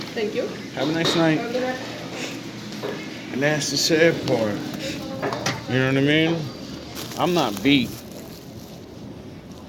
Thank you. Have a nice night. And that's the sad part. You know what I mean? I'm not beat.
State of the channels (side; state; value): both; identical; correlation 1.00